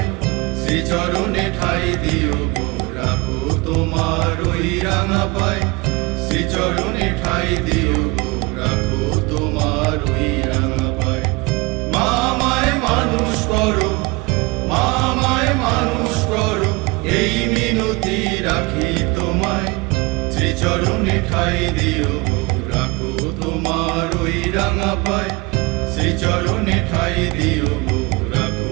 শ্রীচরণে ঠাই দিও গো, রাখো তোমার ওই রাঙা পায়। শ্রীচরণে ঠাই দিও গো, রাখো তোমার ওই রাঙা পায়। মা আমায় মানুষ করো, মা আমায় মানুষ করো, এই মিনতি রাখি তোমায়। শ্রীচরণে ঠাই দিও গো, রাখো তোমার ওই রাঙা পায়। শ্রীচরণে ঠাই দিও গো,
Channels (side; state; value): left; quieter; 25.1 dB